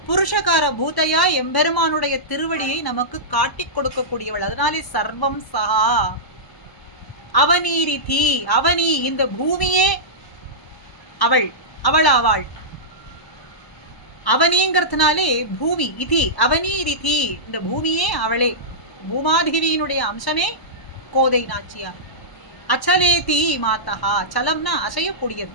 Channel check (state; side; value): late; right; 1.1 ms